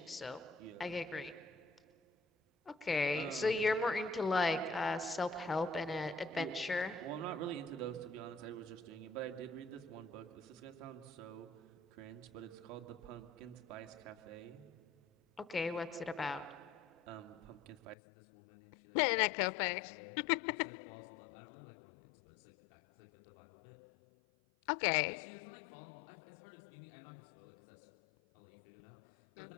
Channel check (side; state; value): right; drops out; at 17.9 s